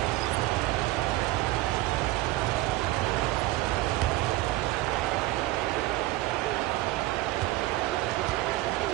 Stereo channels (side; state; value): left; quieter; 17.6 dB